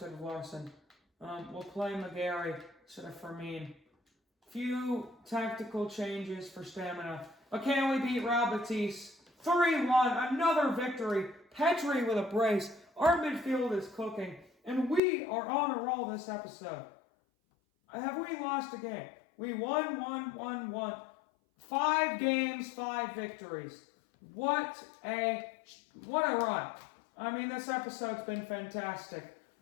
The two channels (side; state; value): right; drops out; at 15.0 s